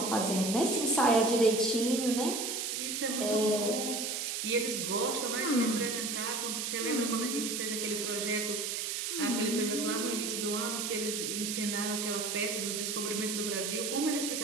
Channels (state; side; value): noise; right; hiss, 2 dB below the sound